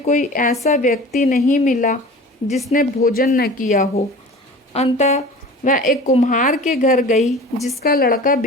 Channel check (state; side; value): normal; both; correlation 0.40